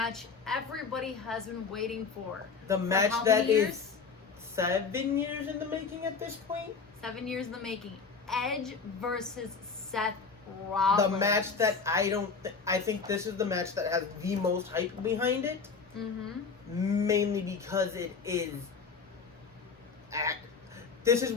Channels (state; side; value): quieter; right; 5.1 dB